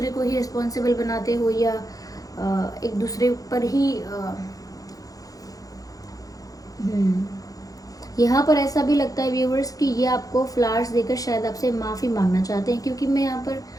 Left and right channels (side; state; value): right; late; 0.17 ms